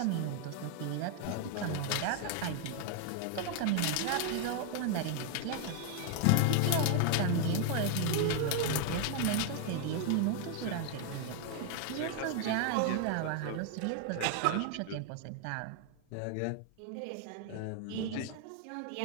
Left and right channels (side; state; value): both; different; correlation 0.00